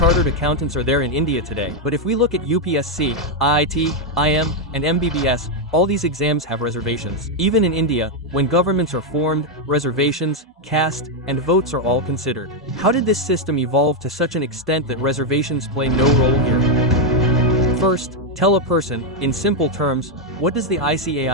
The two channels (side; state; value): both; normal; correlation 0.02